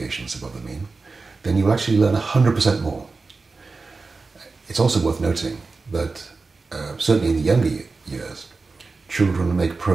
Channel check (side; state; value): left; quieter; 4.0 dB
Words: above the mean, then you will actually learn 100% more. It's also worth noting that certainly in the younger years, children make